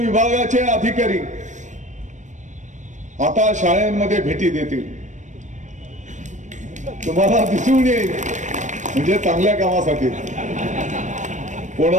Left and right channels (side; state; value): left; late; 0.35 ms